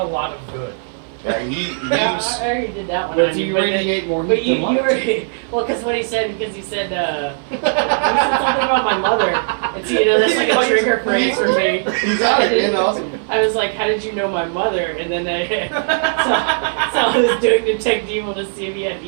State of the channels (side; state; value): left; silent; 57 dB below the other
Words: lot of good. Yeah, Yeah, he's I already did that one. But on you but radiate more But heat you than light. were well, because what he said, he said he said something about my mother, and so that's like a trigger phrase for me. You got it, man. Awesome. I was like, "How did you know my mother?" And then so I was doing detect evil to see if he had